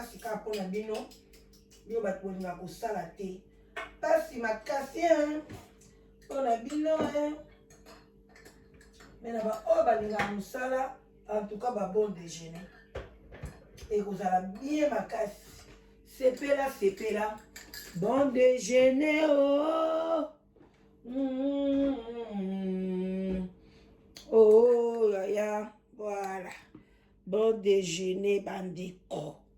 ka pona bino yo ba polinga ko sala te pasi makasi pona bino mais na ba o ba linga musala en tout cas ba bon déjeuner et vous allez bien makasi sepela bon déjeuner oh ya voilà. Bon déjeuner, bandeko.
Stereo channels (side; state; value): both; identical; correlation 1.00